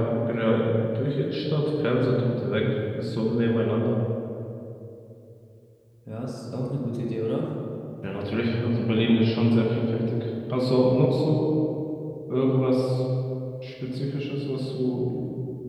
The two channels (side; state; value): both; identical; correlation 1.00